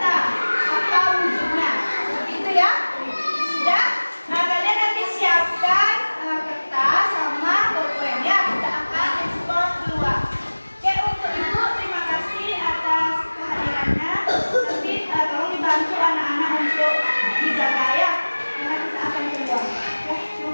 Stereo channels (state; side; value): inverted; both; correlation -1.00